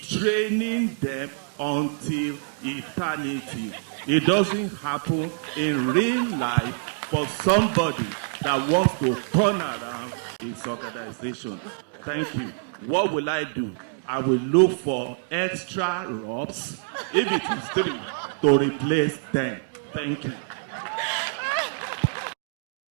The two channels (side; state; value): left; silent; digital silence